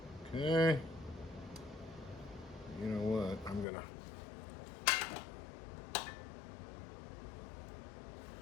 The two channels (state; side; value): drops out; right; at 3.7 s